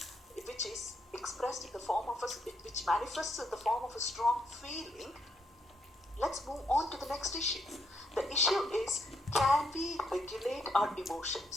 which is expressed in the form of which manifests in the form of a strong feeling. Let's move on to the next issue. The issue is, can we regulate our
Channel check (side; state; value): both; normal; correlation 0.76